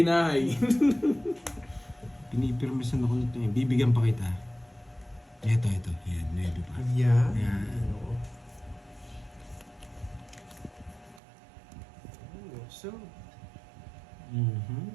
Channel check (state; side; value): drops out; left; at 11.2 s